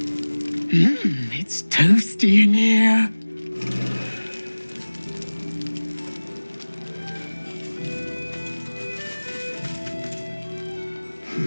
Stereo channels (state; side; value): inverted; both; correlation -1.00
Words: It's toasty in here.